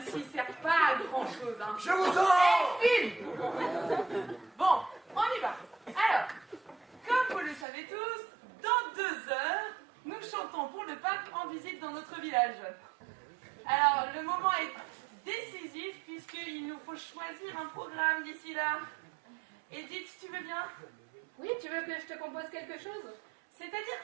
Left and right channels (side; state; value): left; drops out; at 7.7 s